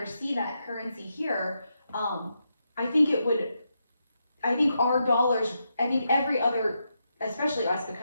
see that currency here. I think it would. I think our dollars. I think every other, especially us,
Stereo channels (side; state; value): both; inverted; correlation -0.83